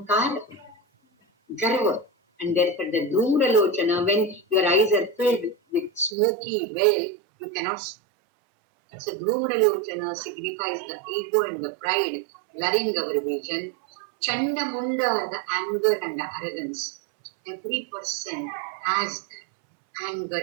garva. And therefore the Dhumralochana, when your eyes are filled with smoky veil, you cannot see. So Dhumralochana signifies the ego and the pride, blurring our vision. Chandamunda are the anger and the arrogance. Every person has that anger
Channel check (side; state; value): left; drops out; at 6.2 s